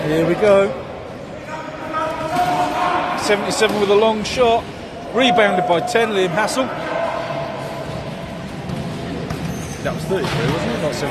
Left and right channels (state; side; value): identical; both; correlation 1.00